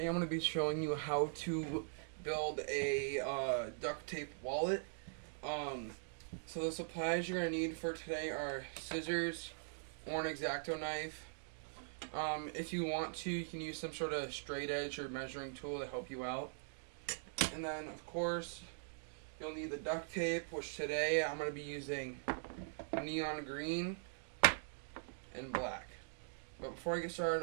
I'm going to be showing you how to build a duct tape wallet. So the supplies you're going to need for today are scissors or an X-Acto knife. If you want to, you can use some sort of straight edge or measuring tool to help you out. And then of course you'll need the duct tape, which today I'm going to be using neon green and black. But before I get started,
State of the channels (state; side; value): silent; left; digital silence